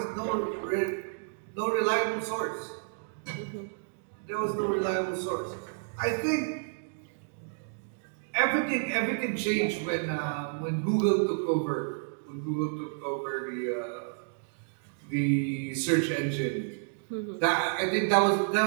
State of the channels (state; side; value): silent; left; digital silence